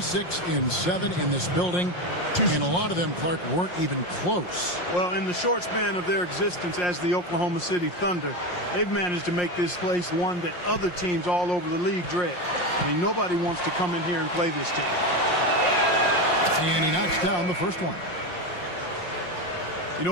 in this building. And a lot of them, Clark, weren't even close. Well, in the short span of their existence as the Oklahoma City Thunder, they've managed to make this place one that other teams all over the league dread. I mean, nobody wants to come in here and play this team. And he knocks down the first one. You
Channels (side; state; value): right; late; 5.6 ms